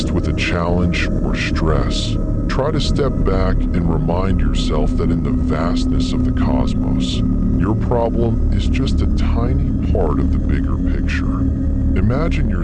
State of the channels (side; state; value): both; identical; correlation 1.00